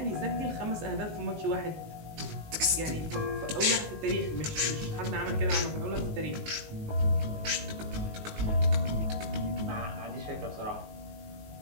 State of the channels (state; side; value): late; left; 19 ms